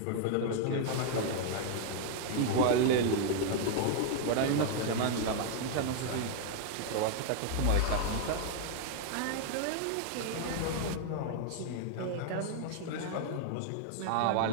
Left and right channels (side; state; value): both; different; correlation 0.00